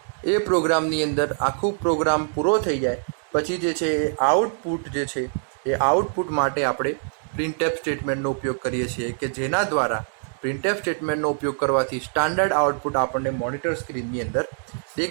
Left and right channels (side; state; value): left; silent; digital silence